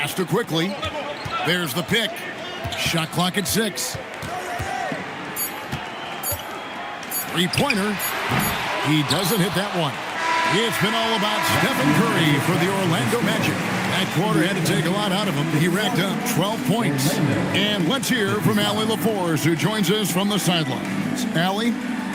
to Quickly. There's the pick. Shot clock at 6. Three-pointer. He doesn't hit that one. It's been all about Stephen Curry for the Orlando Magic. That quarter had to take a lot out of him. He racked up 12 points. And let's hear from Allie LaForce, who joins us from the sidelines. Allie?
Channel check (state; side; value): identical; both; correlation 1.00